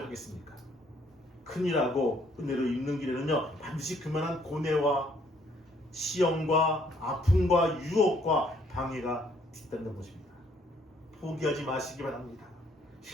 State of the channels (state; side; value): normal; both; correlation 0.65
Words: 하겠습니까? 큰일하고 은혜로 입는 길에는요, 반드시 그만한 고뇌와 시험과 아픔과 유혹과 방해가 있다는 것입니다. 포기하지 마시기 바랍니다.